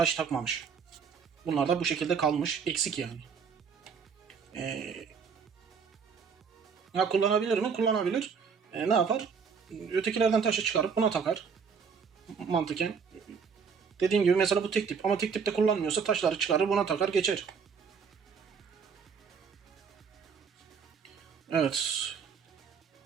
takmamış. Bunlar da bu şekilde kalmış. Eksik yani. Ya kullanabilir mi? Kullanabilir. Ne yapar? Ötekilerden taşı çıkarıp buna takar. Mantıken. Dediğim gibi mesela bu tek tip. Ama tek tipte kullanmıyorsa taşları çıkarır buna takar geçer. Evet.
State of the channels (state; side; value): quieter; left; 6.1 dB